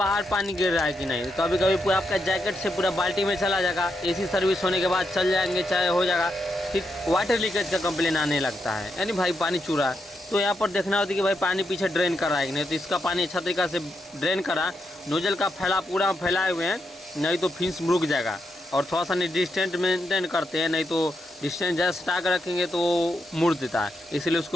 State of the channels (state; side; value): normal; both; correlation 0.82